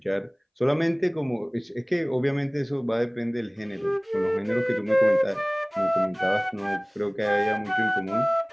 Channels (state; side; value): identical; both; correlation 1.00